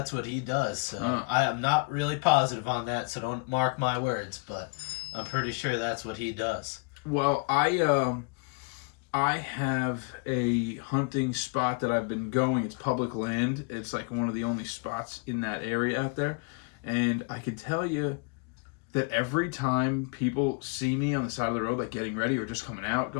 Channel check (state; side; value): quieter; right; 33.9 dB